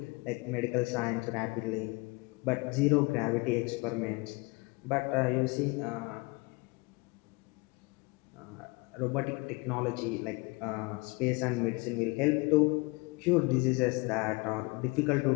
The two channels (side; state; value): right; quieter; 26.8 dB